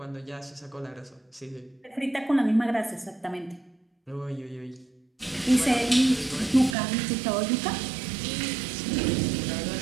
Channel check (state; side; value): drops out; left; at 6.8 s